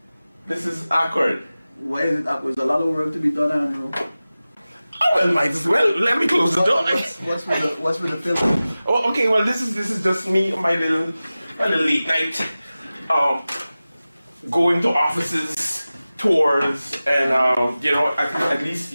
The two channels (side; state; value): both; inverted; correlation -0.96